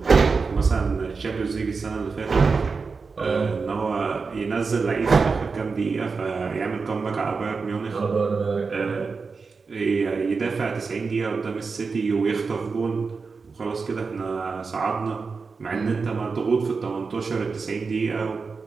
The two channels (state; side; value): quieter; left; 4.7 dB